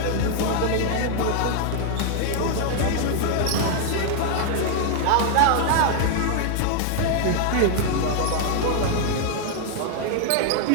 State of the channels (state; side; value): different; both; correlation 0.00